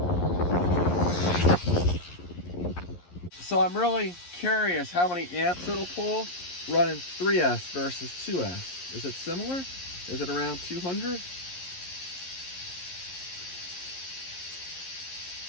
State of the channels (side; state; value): right; late; 11 ms